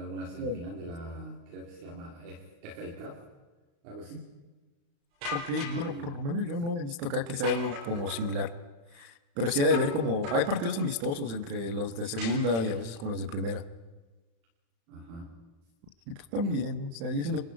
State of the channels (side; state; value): left; late; 36 ms